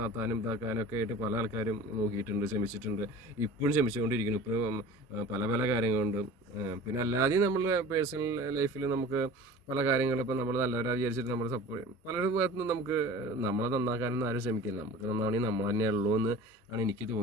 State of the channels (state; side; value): normal; both; correlation 0.41